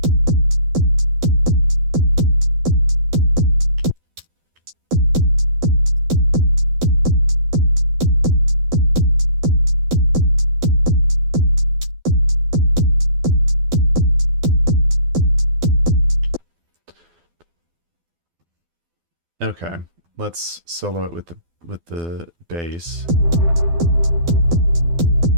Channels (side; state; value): left; late; 12 ms